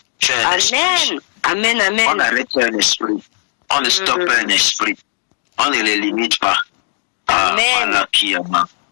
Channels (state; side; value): silent; right; digital silence